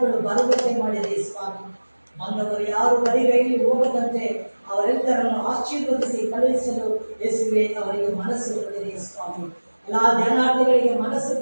ಬರುವಂತೆ ಮಾಡಿರಿ ಸ್ವಾಮಿ. ಬಂದವರು ಯಾರು ಬರಿಗೈಲಿ ಹೋಗದಂತೆ ಅವರೆಲ್ಲರನ್ನು ಆಶೀರ್ವದಿಸಿ ಕಳುಹಿಸಲು ಯೇಸುವೆ ಅವರಿಗೆ ಮನಸ್ಸು ಕೊಡಿರಿ ಸ್ವಾಮಿ. ಎಲ್ಲ ಧ್ಯಾನಾರ್ಥಿಗಳಿಗೆ ಮನಸ್ಸು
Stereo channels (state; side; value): inverted; both; correlation -1.00